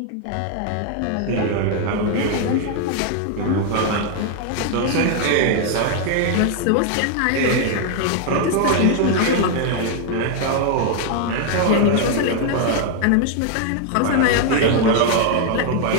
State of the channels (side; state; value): both; different; correlation 0.00